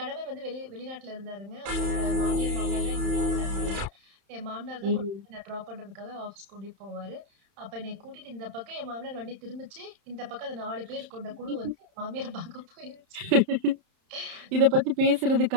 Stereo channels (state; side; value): late; left; 31 ms